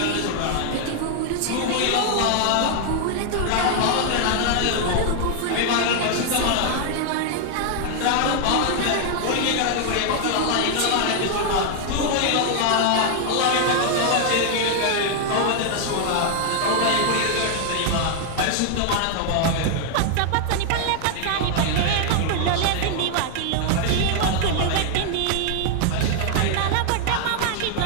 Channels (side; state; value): both; different; correlation 0.00